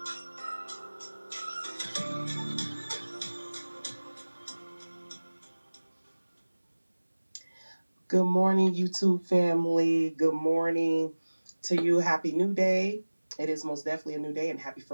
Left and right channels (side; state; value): both; inverted; correlation -1.00